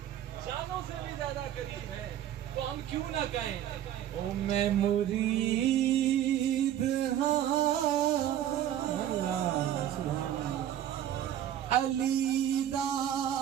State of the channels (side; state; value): left; quieter; 11.3 dB